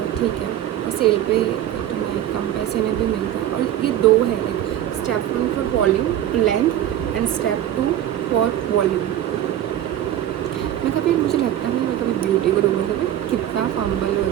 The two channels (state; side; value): quieter; left; 11.8 dB